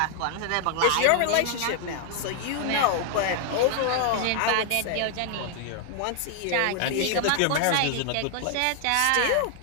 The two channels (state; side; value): different; both; correlation 0.00